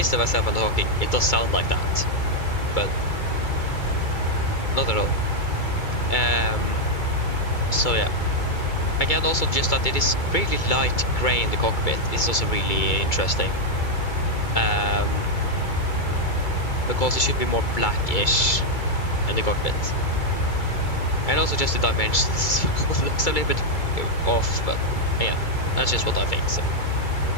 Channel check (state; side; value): late; right; 2.3 ms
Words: to myself and talking, it does sound like that, but not at all. So yeah. Again, also just that it is really light grey in the cockpit is also really interesting. Because it should be more blackish in the cockpit. And also just the dimensions looks a little bit off, but yeah, that's just what I think. So.